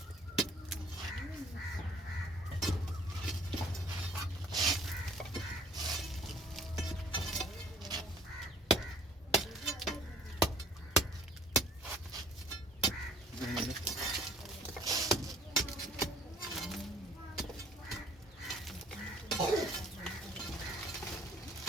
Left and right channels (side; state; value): both; normal; correlation 0.56